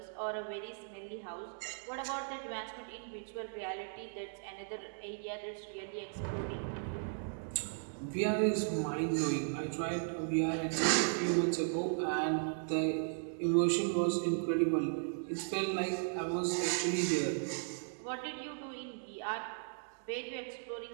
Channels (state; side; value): silent; left; digital silence